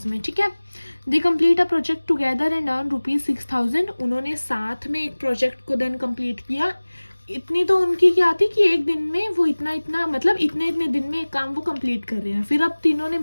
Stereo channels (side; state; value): both; inverted; correlation -1.00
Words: में. ठीक है, they complete a project together and earn ₹6,000. उन्होंने साथ में एक प्रोजेक्ट को देन कंप्लीट किया. इतनी तो उनकी क्या थी कि एक दिन में वो इतना मतलब इतने दिन में एक काम वो कंप्लीट कर रहे हैं. फिर अब तीनों ने